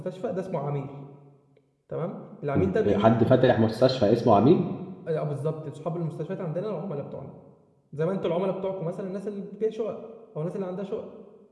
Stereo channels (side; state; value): both; identical; correlation 1.00